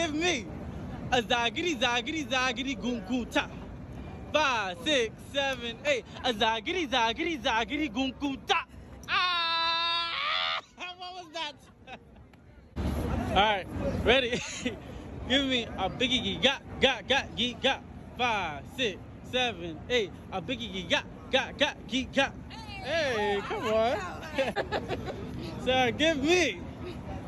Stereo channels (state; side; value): identical; both; correlation 1.00